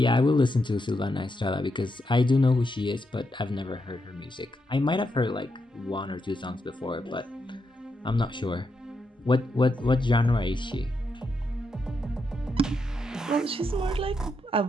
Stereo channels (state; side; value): normal; both; correlation 0.82